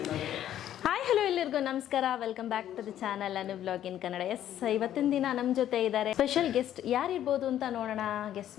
ಹಾಯ್ ಹಲೋ ಎಲ್ಲರಿಗೂ ನಮಸ್ಕಾರ, welcome back to the channel Anu vlog in Kannada. Yes, ಇವತ್ತಿನ ದಿನ ನಮ್ಮ ಜೊತೆ ಇದ್ದಾರೆ ಸ್ಪೆಷಲ್ ಗೆಸ್ಟ್. ಯಾರಿರ್ಬೋದು ಅಂತ ನೋಡೋಣ, ಗೆಸ್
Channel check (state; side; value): quieter; right; 11.4 dB